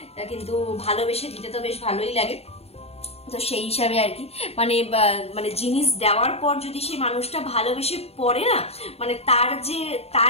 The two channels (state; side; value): late; right; 0.29 ms